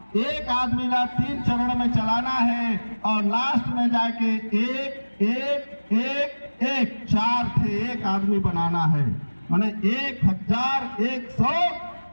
एक आदमी ला 3 चरण में चलाना है और लास्ट में जाके एक 4 थे एक आदमी बनाना है। माने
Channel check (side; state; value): both; inverted; correlation -1.00